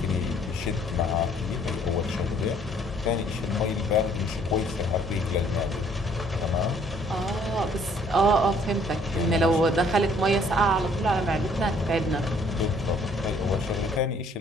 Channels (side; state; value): both; normal; correlation 0.61